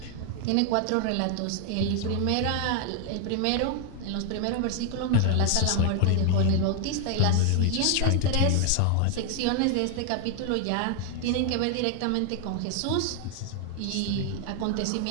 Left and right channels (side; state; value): both; different; correlation 0.00